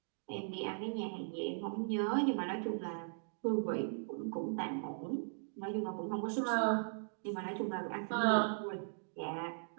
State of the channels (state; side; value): silent; left; digital silence